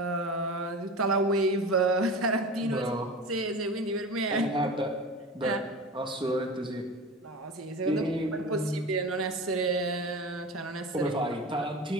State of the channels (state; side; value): normal; both; correlation 0.32